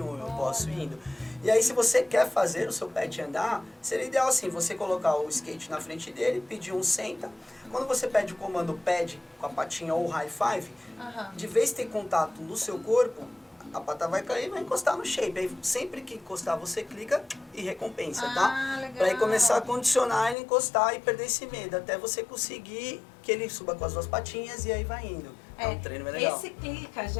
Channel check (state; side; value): drops out; right; at 20.4 s